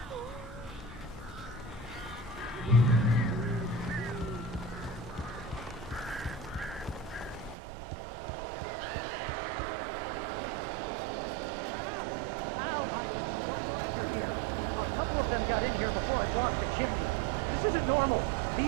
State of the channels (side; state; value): left; drops out; at 7.6 s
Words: I am so glad you're here. A couple of them got in here before I blocked the chimney. This isn't normal.